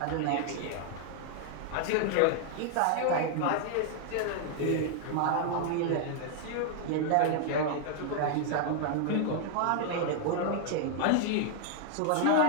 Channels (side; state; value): both; different; correlation 0.00